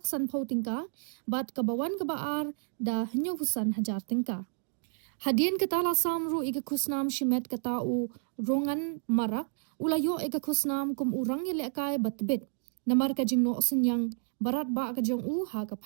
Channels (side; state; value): left; silent; digital silence